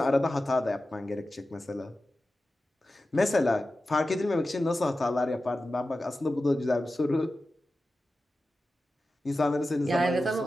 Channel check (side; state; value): both; normal; correlation 0.93